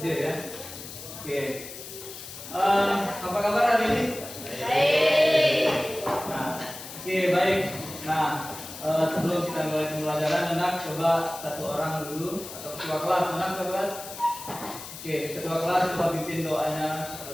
Dia ya. Oke. Apa kabar hari ini? Baik. Nah, oke baik. Nah, sebelum kita mulai pembelajaran, anak coba satu orang dulu atau ketua kelas, anak ketua kelas. Oke, ketua kelas coba pimpin doanya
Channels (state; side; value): noise; left; hiss, 12 dB below the sound